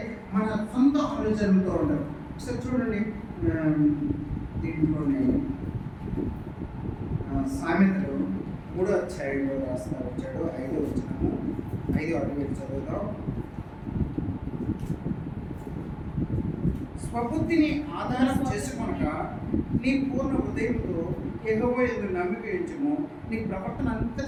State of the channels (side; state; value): both; identical; correlation 1.00